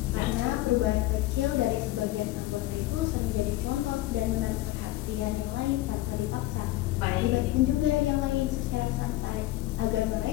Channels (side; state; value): right; quieter; 17.0 dB